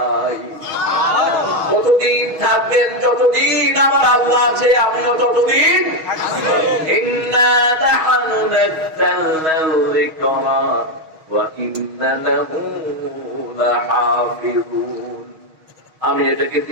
কতদিন থাকবেন? যতদিন আমার আল্লাহ আছে আমিও ততদিন। ইন্না নাহনু নাযালনাল যিকরা ওয়া ইন্না লাহু লাহাফিজুন। আমি এটাকে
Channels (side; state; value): left; late; 6.3 ms